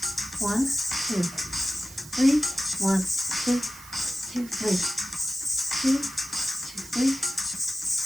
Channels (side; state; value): right; noise; hiss, 17 dB below the sound